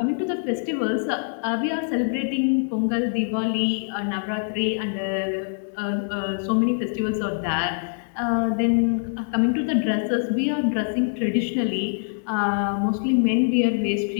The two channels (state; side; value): silent; right; digital silence